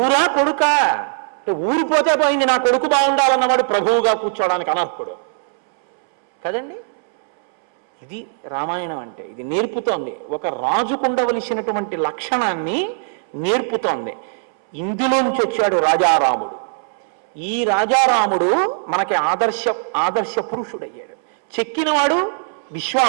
కొడుక అంటే ఊరిపోతే పోయింది, నా కొడుకు బాగుండాలన్నవాడు ప్రభువుగా కూర్చోవడానికి అనర్హుడు కదండి. ఇది రామాయణం అంటే. ఇది నేర్పుతోంది, ఒక రాజుకుండవలసినటువంటి లక్షణాన్ని నేర్పుతోంది. ఇందులోంచి వచ్చాడు రాజారాముడు. ఈ రాజారాముడు మనకి ఆదర్శ పురుషుడయ్యాడు. చెక్కినవాడు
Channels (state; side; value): silent; left; 66 dB below the other